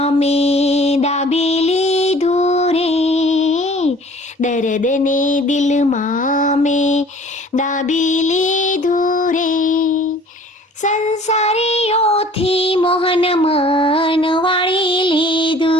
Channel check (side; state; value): both; normal; correlation 0.50